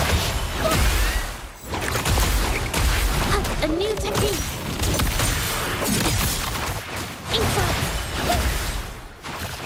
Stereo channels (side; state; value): both; identical; correlation 1.00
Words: A new technique. Inside.